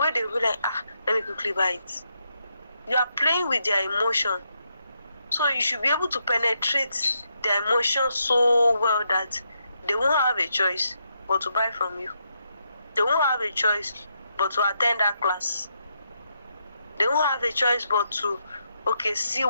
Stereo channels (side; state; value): both; inverted; correlation -0.81